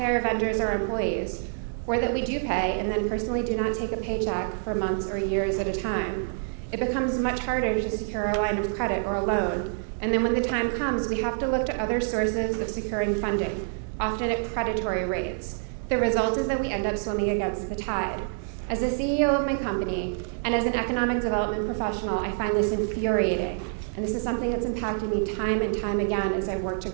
our vendors or employees, or that we do pay and then personally do not take a paycheck for months or years at a time. It becomes much harder to secure a line of credit or a loan, and then when the time comes, we have to look to other sources of securing funding, often at predatory rates. The result is that we end up swimming against the tide. As the CEO of my company, and as an economic development professional, I find this infuriating. And this is something that's impacted me time and time again as I've worked to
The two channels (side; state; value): left; silent; digital silence